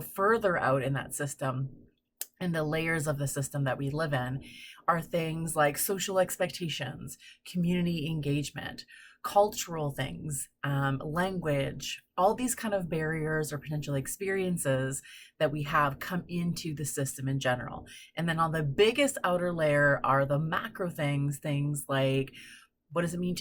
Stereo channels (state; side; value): identical; both; correlation 1.00